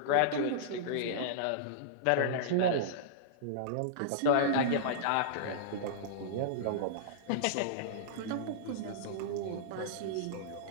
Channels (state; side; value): different; both; correlation -0.03